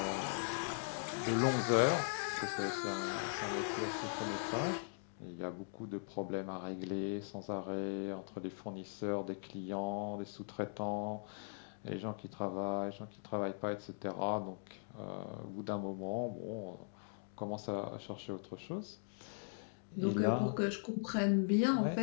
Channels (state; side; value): silent; right; digital silence